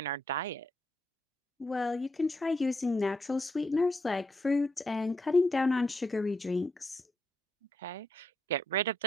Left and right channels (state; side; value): normal; both; correlation 0.78